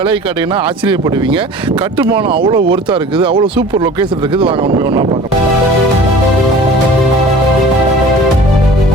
கேட்டீங்கன்னா ஆச்சரியப்படுவீங்க. கட்டுமானம் அவ்வளோ ஒர்த்தாக இருக்குது, அவ்வளோ சூப்பர் லொக்கேஷன் இருக்குது. வாங்க உண்மை ஒன்றா பார்க்கலாம்.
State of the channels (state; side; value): normal; both; correlation 0.43